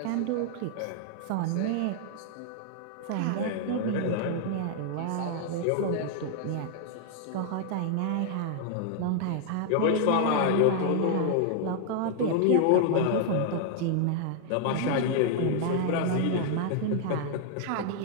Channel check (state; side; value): different; both; correlation -0.01